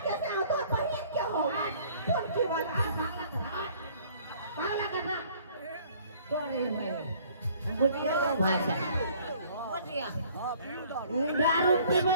कैसे हो तोहर बहन के हो कौन की वाला पागल करना तोरे मेरे बुझिया का भाषा बुझिया दारू पी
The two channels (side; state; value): both; inverted; correlation -0.57